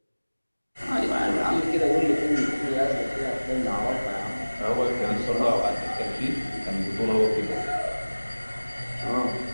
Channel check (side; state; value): both; inverted; correlation -1.00